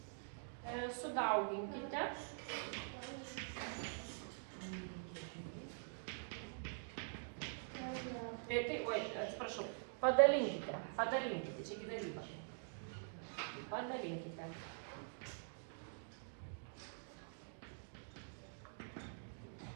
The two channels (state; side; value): silent; left; digital silence